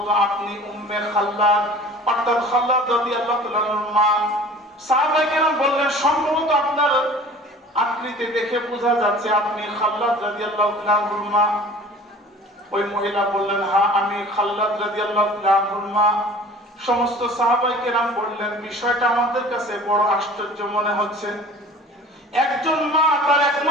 আপনি উম্মে খাল্লাদ অর্থাৎ খাল্লাদ রাদিয়াল্লাহু তাআলার মা। সাহাবায়ে কেরাম বললেন, সম্ভবত আপনার আকৃতি দেখে বোঝা যাচ্ছে আপনি খাল্লাদ রাদিয়াল্লাহু তাআলার মা। ওই মহিলা বললেন, হ্যাঁ আমি খাল্লাদ রাদিয়াল্লাহু তাআলার মা। সমস্ত সাহাবায়ে কেরাম বললেন, বিষয়টা আমাদের কাছে বড় আশ্চর্য মনে হচ্ছে। একজন মা তার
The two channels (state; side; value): normal; both; correlation 0.44